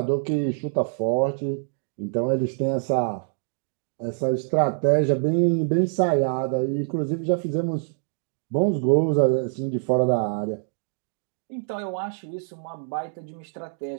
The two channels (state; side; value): silent; left; digital silence